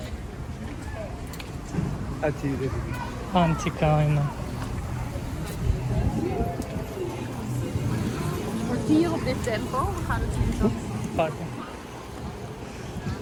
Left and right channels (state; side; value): identical; both; correlation 1.00